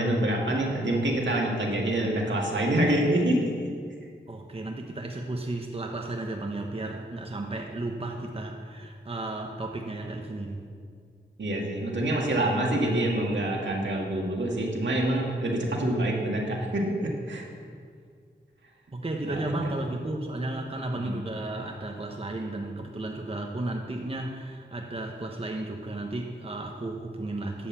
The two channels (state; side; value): normal; both; correlation 0.65